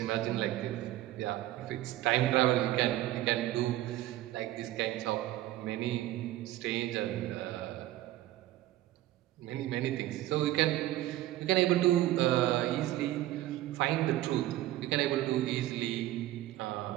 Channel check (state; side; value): quieter; left; 15.0 dB